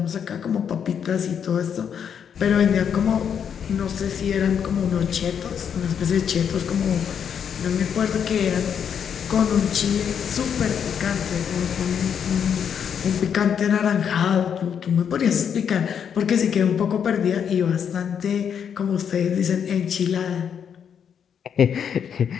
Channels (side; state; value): right; quieter; 7.9 dB